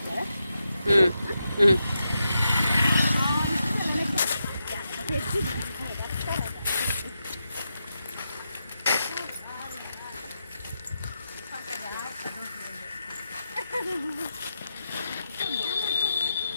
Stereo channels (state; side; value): inverted; both; correlation -0.86